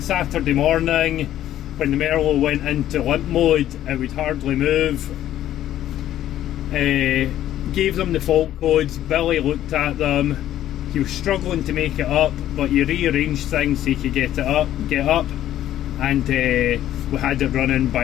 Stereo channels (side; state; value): right; quieter; 12.4 dB